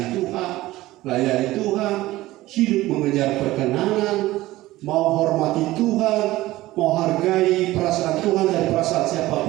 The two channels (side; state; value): left; quieter; 17.2 dB